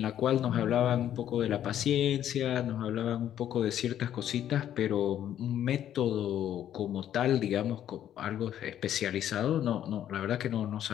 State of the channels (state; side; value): quieter; right; 10.9 dB